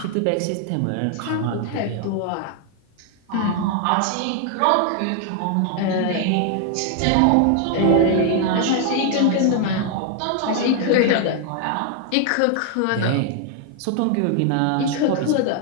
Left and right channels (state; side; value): different; both; correlation 0.00